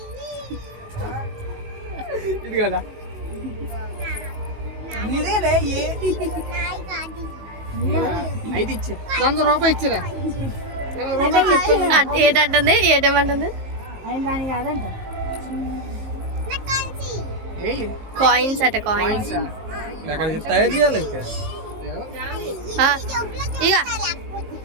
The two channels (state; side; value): late; left; 19 ms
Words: ఇది కదా అయితే ఇచ్చి 100 రూపాయలు ఇచ్చిరా ఏటంటుంది ఏటేమంటుంది కాయిన్స్ అట కాయిన్స్ తయారు చేయాలి ఇంకా ఇక